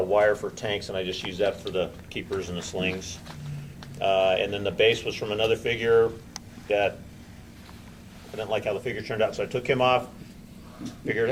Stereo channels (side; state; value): both; identical; correlation 1.00